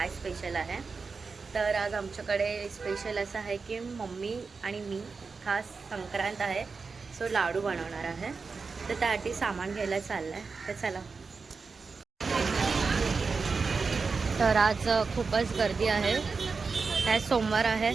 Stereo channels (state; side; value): quieter; left; 4.7 dB